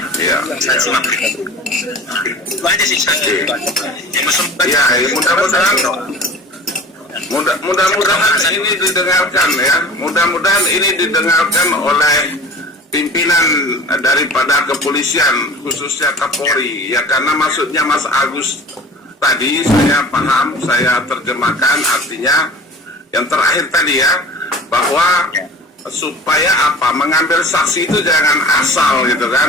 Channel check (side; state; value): both; normal; correlation 0.40